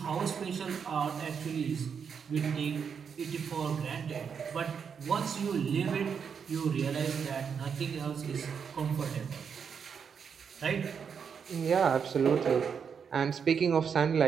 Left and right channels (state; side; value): quieter; left; 6.7 dB